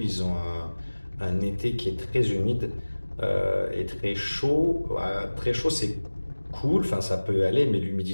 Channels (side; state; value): both; inverted; correlation -1.00